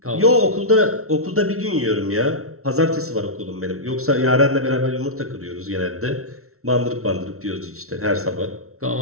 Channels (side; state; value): left; late; 0.63 ms